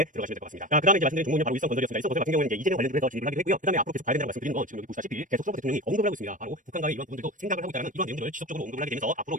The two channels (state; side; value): late; left; 0.38 ms